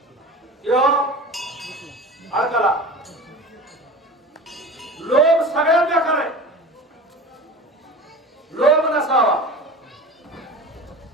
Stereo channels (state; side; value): normal; both; correlation 0.35